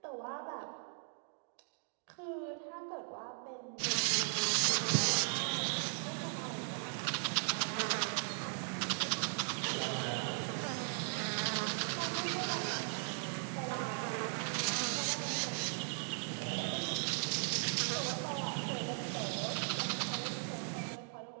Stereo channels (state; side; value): silent; left; 52 dB below the other